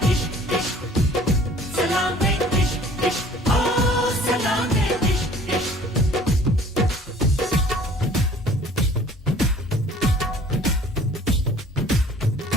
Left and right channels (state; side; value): normal; both; correlation 0.51